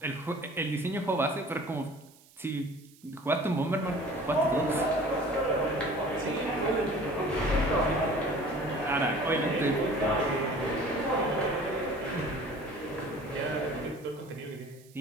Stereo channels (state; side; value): noise; right; hiss, 26 dB below the sound